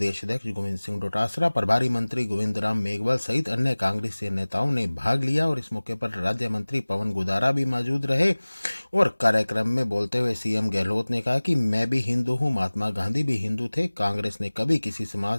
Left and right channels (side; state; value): both; inverted; correlation -1.00